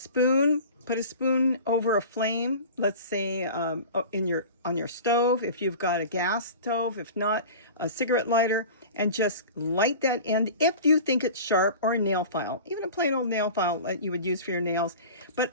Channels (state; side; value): inverted; both; correlation -0.37